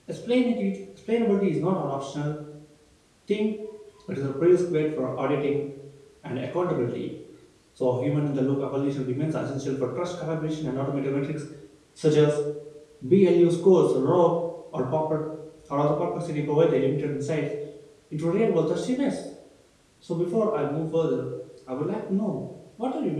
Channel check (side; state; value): both; identical; correlation 1.00